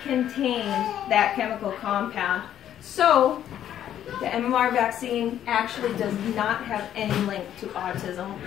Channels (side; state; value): right; quieter; 10.7 dB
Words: contained that chemical compound. So the MMR vaccine actually does not have any link to autism